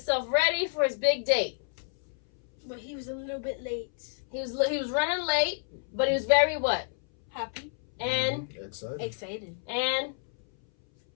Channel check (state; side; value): silent; right; 58 dB below the other